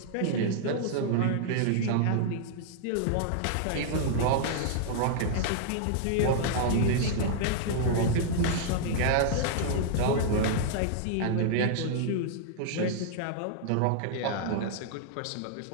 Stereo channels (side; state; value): both; different; correlation -0.01